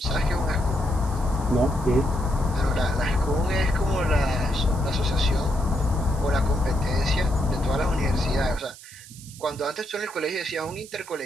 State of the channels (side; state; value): right; noise; hiss, 18 dB below the sound